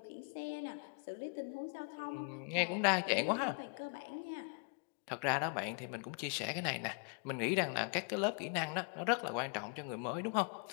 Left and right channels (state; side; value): quieter; right; 39.4 dB